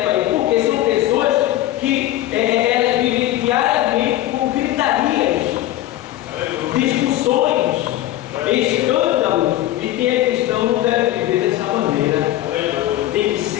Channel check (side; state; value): right; quieter; 14.5 dB